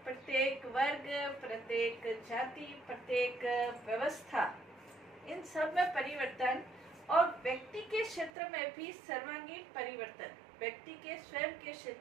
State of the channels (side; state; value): left; drops out; at 8.3 s